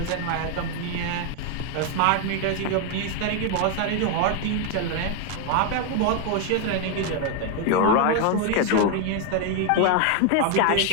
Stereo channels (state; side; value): different; both; correlation 0.01